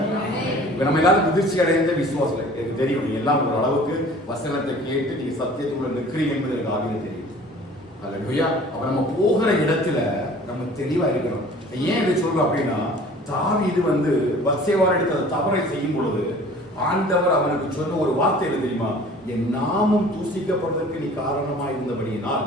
நம்ம எல்லாரும் முதிர்ச்சி அடைந்த விசுவாசம் எனக்கு தெரியும். நீங்க எல்லாம் ஒரு அளவுக்கு வசனத்தை கேட்டு நீங்க சத்தியத்துக்குள்ள நிற்கிறீங்க என்பது எனக்கு ஆகிய தெரியும். அல்லேலூயா. அப்ப நம்ம போகிற இடத்துல நம்ம தெளிவா இருக்கணும். ஏன் இதை சொல்றோம் அப்படின்னா, தாவீது பத்சேபாள் எடுத்த தவறை செய்யும் பொழுது ஆண்டவர் அவனுக்கு சொன்ன ஒரு வார்த்தை என்ன தெரியுமா? என் நாமம் தூசிக்கப்படுவதற்கு நீ காரணமா இருந்தபடியினால்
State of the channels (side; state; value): both; normal; correlation 0.47